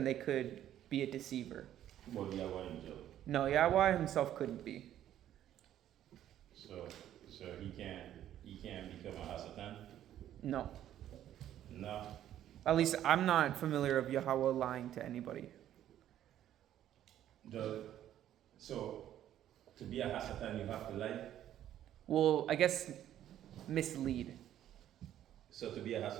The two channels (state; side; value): quieter; left; 11.6 dB